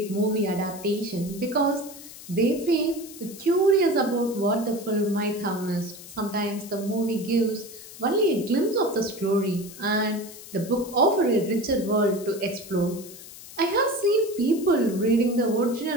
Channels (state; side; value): noise; left; hiss, 16 dB below the sound